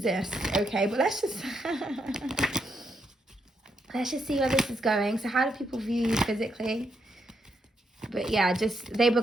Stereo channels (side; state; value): both; normal; correlation 0.79